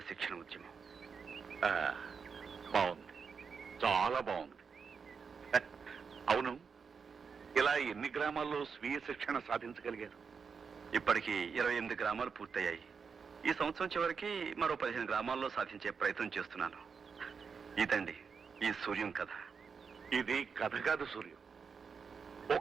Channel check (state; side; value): quieter; left; 5.8 dB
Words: శిక్షణ ఉద్యమం. బాగుంది, చాలా బాగుంది. అవును, ఇలా ఎన్ని గ్రామాల్లో స్వీయ శిక్షణ సాధించగలిగారు? ఇప్పటికి 28 గ్రామాలు పూర్తయ్యాయి. ఈ సంవత్సరం చివరికి మరో 15 గ్రామాల్లో సాధించే ప్రయత్నం చేస్తున్నాను. ఇదండి ఈ సూర్యం కథ. ఇది కథ కాదు సూర్యం.